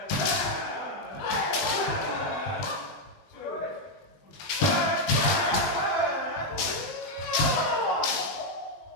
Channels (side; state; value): right; late; 20 ms